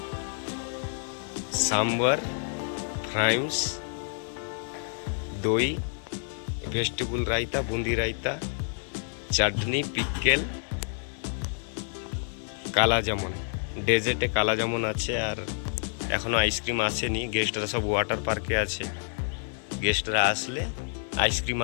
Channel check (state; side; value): silent; right; 59 dB below the other